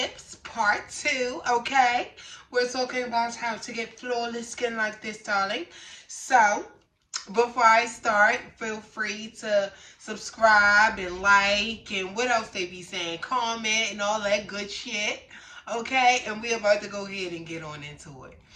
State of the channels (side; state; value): both; identical; correlation 1.00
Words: part 2, okay? We're talking about how to get flawless skin like this, darling. So, before I start, feel free to subscribe and like and what else they be saying, comment and all that good shit, okay? And we're about to go ahead and get on into it.